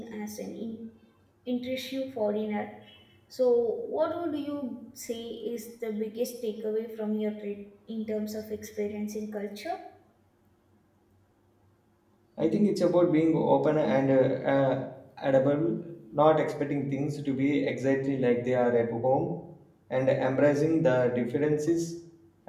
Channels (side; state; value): both; identical; correlation 1.00